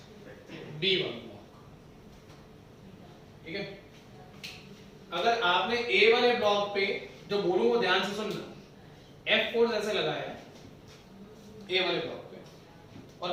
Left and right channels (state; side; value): identical; both; correlation 1.00